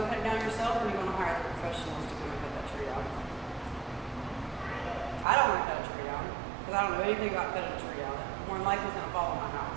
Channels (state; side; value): drops out; left; at 5.2 s